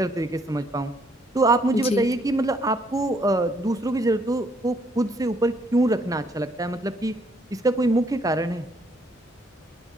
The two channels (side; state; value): both; normal; correlation 0.68